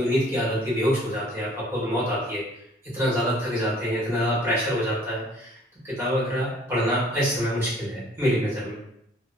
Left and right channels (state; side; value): normal; both; correlation 0.56